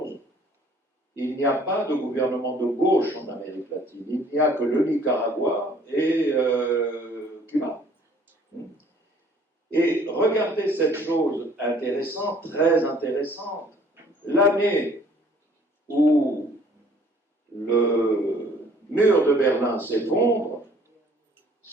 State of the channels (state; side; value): normal; both; correlation 0.57